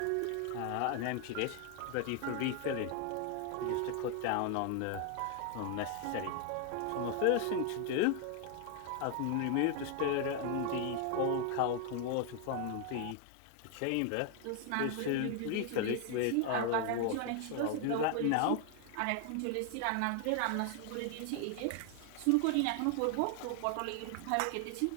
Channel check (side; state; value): both; different; correlation 0.00